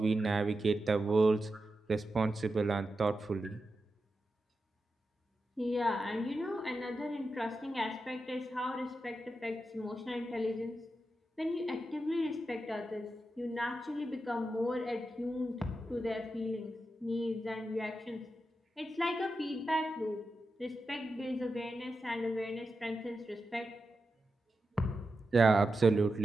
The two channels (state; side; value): normal; both; correlation 0.89